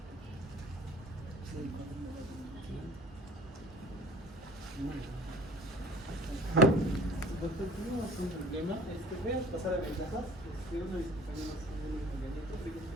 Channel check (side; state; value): both; normal; correlation 0.48